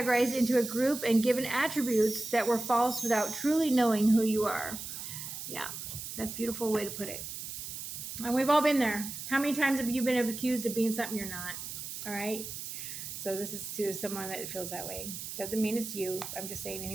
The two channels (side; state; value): right; noise; hiss, 8 dB below the sound